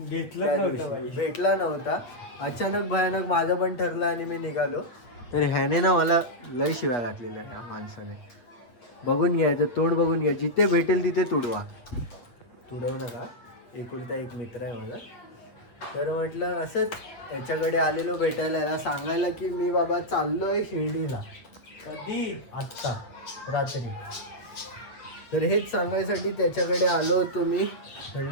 भेटला नव्हता अचानक भयानक माझं पण ठरलं आणि मी निघालो. तर ह्याने ना मला लय शिव्या घातलेल्या ह्या माणसाने. बघून घ्यायचं, तोंड बघून घ्या. जिथे भेटेल तिथे तुडवा. तुडवू नका, एकुलता एक मित्र आहे माझा. तर म्हटलं असंच याच्याकडे आलेलो भेटायला, याला सांगायला की मी बाबा चाललोय शिर्डीला. कधी? आत्ता रात्री. तर हेच सांगायसाठी त्याच्याकडे आलो होतो मी.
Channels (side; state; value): right; late; 8.2 ms